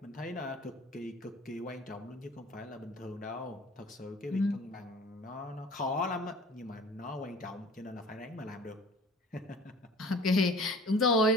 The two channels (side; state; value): both; normal; correlation 0.45